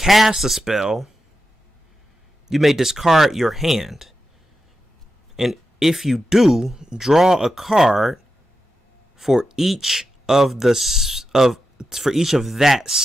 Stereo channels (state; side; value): normal; both; correlation 0.89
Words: a spell, you may discard your hand. And if you do, draw a card for each of that